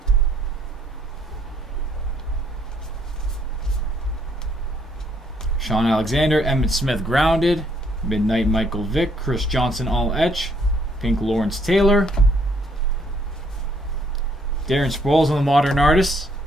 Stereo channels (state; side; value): normal; both; correlation 0.68